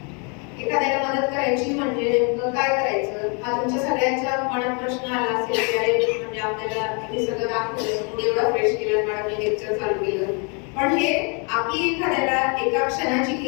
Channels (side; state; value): right; quieter; 35.6 dB